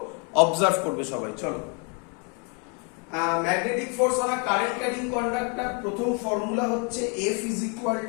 অবজার্ভ করবে সবাই। চলো, magnetic force on a current carrying conductor, প্রথম ফর্মুলা হচ্ছে F is equal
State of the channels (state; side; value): quieter; right; 36.3 dB